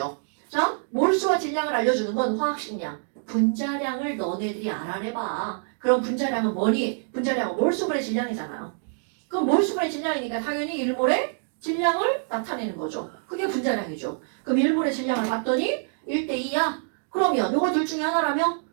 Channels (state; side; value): silent; left; digital silence